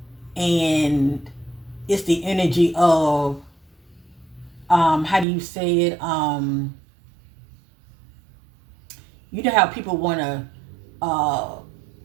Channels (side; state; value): left; drops out; at 5.2 s